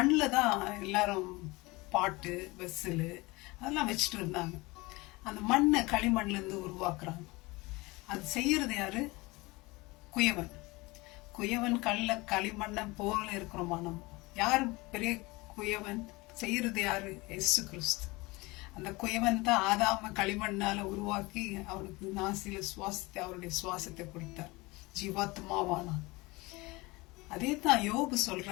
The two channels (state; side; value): quieter; right; 23.2 dB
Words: தான் எல்லாரும் பாட்டு வெஸ்ஸில் அதெல்லாம் வச்சுட்டு இருந்தாங்க. அந்த மண்ணை களிமண்லேருந்து உருவாக்குறாங்க. அது செய்யறது யாரு? குயவன். குயவன் களிமண்ணை போல இருக்கிறோமா நம்ம? யார் பெரிய குயவன்? செய்யறது யாரு? இயேசு கிறிஸ்து. அந்த குயவன் தான் ஆதாம களிமண்ணால உருவாக்கி அவனுக்கு நாசியில சுவாசத்தை, அவருடைய சுவாசத்தை கொடுத்தார், ஜீவாத்மாவானான். அதே தான் யோபு